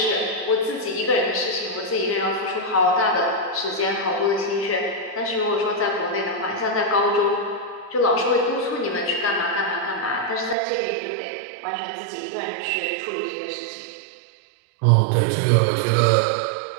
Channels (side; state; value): left; drops out; at 10.6 s